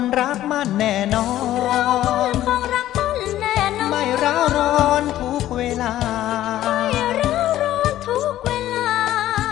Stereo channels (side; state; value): right; quieter; 13.4 dB